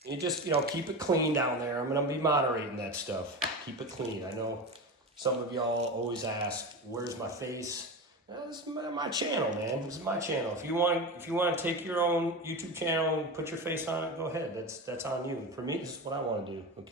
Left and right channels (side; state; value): both; normal; correlation 0.24